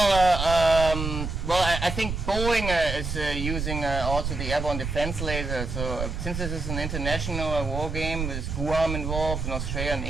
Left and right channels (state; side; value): noise; right; rumble, 4 dB below the sound